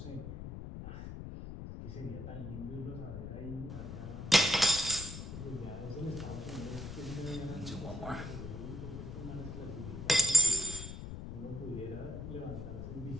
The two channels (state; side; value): noise; left; rumble, 8 dB below the sound